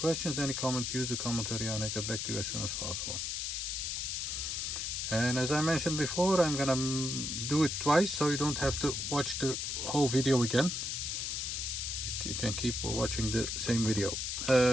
any comments, use the comment area and I'll get back to you as soon as possible. And as I mentioned before, I'm gonna do it twice so you don't have to watch the whole video again. You can keep watching the same video.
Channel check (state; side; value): noise; left; hiss, 2 dB below the sound